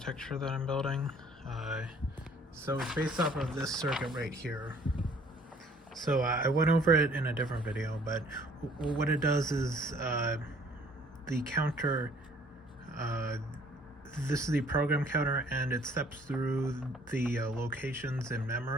that I'm building. So it's based off of this circuit right here. So I went over it in a different video, but what it does is the counter, this is the program counter, and it steps through the locations in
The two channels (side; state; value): both; normal; correlation 0.58